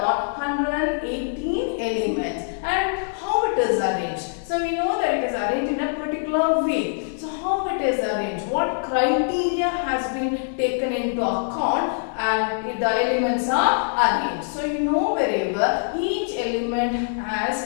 118 elements. And how it is arranged? So we know that it is arranged in a particular way. So how it is arranged? What criteria has been taken into account and the elements are arranged? So you know very well, each element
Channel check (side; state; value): right; silent; 63 dB below the other